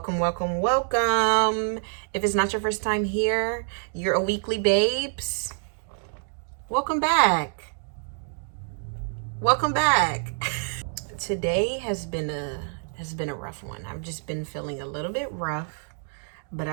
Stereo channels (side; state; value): left; silent; digital silence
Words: If it's not your first time here, you're a weekly babes. Welcome back. Today has been a rough one. I've just been feeling a little bit rough, but